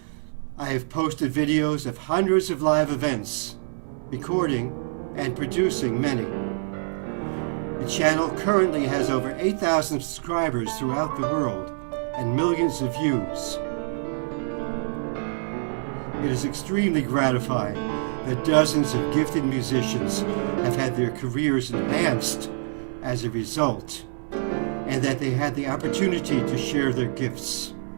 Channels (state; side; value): silent; left; 60 dB below the other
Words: I have posted videos of hundreds of live events, recording and producing many. The channel currently has over 8,000 subscribers throughout the world and millions of views. It is extremely gratifying that dozens of gifted musicians have had their careers enhanced as a result, and that they had the opportunity to share their gifts.